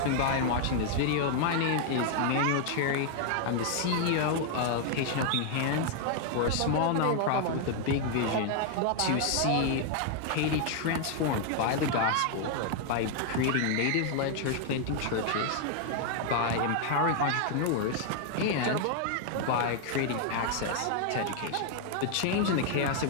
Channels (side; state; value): both; different; correlation 0.00